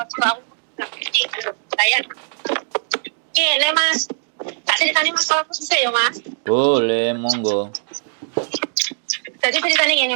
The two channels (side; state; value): left; silent; digital silence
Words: aku gak ngerti. Bayar. Kene, Mas. Tak ceritani masalahku susah ya, Mas. Boleh, monggo. Jadi ceritanya gini,